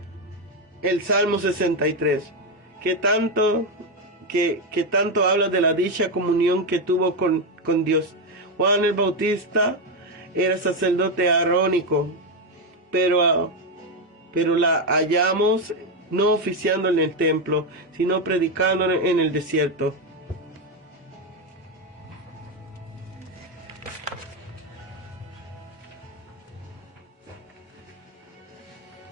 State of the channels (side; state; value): both; normal; correlation 0.07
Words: el Salmo 63, que tanto habla de la dicha comunión que tuvo con Dios. Juan el Bautista era sacerdote arónico, pero la hallamos no oficiando en el templo, sino predicando en el desierto.